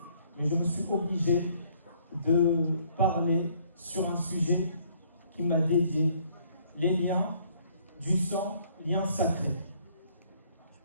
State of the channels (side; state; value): both; inverted; correlation -0.63